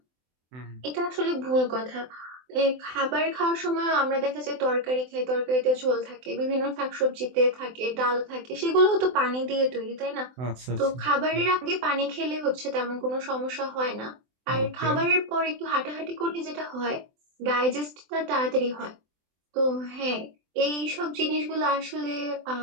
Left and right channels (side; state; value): left; late; 24 ms